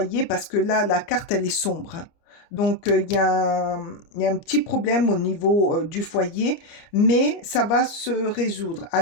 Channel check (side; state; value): right; late; 29 ms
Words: parce que là, la carte, elle est sombre, hein. Donc, il y a un petit problème au niveau du foyer, mais ça va se résoudre.